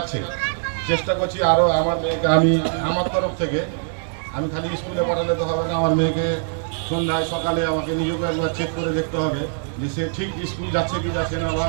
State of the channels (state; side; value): silent; left; digital silence